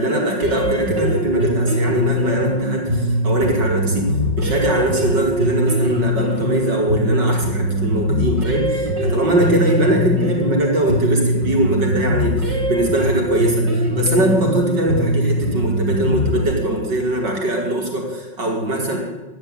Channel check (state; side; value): late; left; 5.4 ms